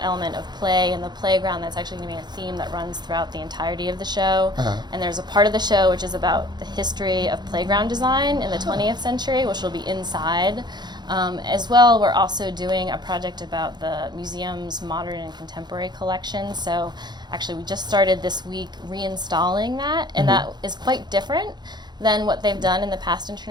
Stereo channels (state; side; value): late; left; 0.21 ms